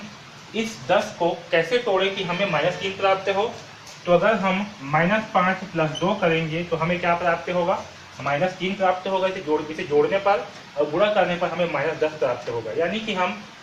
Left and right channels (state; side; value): identical; both; correlation 1.00